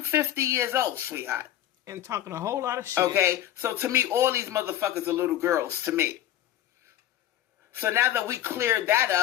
50 years old, sweetheart. And talking a whole lot of shit. Okay? So to me, all these motherfuckers are little girls to me. So now that we cleared that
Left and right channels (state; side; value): quieter; right; 12.4 dB